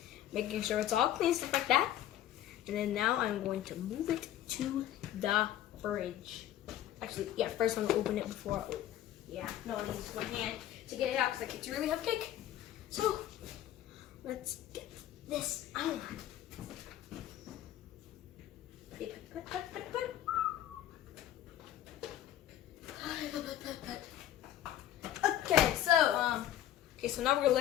making sure it's all clean, stuff like that. And then now I'm going to move it to the fridge. Actually, yeah, first I'm gonna open it before. Yeah, no, I need to use my hand to get it out because it's a really heavy cake. So let's get this out. Okay, so now we're gonna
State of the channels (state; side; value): quieter; right; 12.2 dB